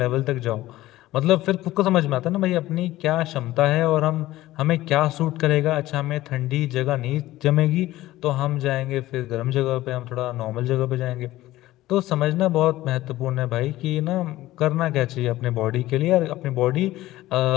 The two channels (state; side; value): quieter; right; 16.2 dB